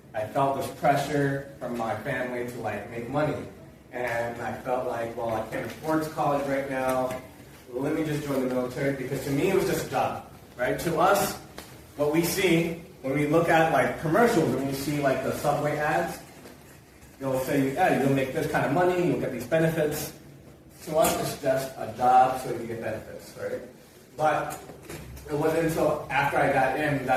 I felt this pressure from my family to make money. And I felt like, well, I can't afford college right now. Let me just join the military, because to me it was just a job, right? To us, what we see when we look at commercials, when we see the subway ads, they'll say, yeah, you'll make this kind of money, you'll get these benefits. To us, it's just a job so you get benefits, right? But it wasn't until after I got in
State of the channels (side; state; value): both; identical; correlation 1.00